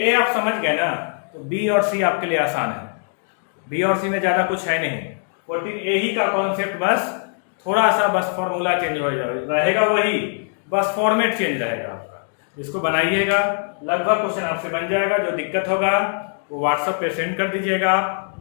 आप समझ गए ना तो B और C आपके लिए आसान है। B और C में ज्यादा कुछ है नहीं, 14A ही का कॉन्सेप्ट, बस थोड़ा सा बस फॉर्मूला चेंज हो रहेगा, वही बस फॉर्मेट चेंज रहेगा आपका। इसको बनाइएगा, लगभग क्वेश्चन आपसे बन जाएगा। जो दिक्कत होगा वो व्हाट्सएप पे सेंड कर दीजिएगा आप,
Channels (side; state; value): right; silent; digital silence